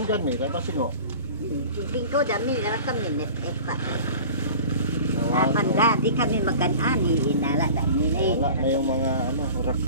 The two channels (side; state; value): both; inverted; correlation -0.40